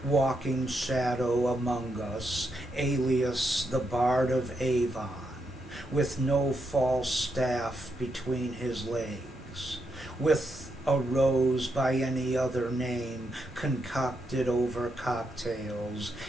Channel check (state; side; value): normal; both; correlation 0.81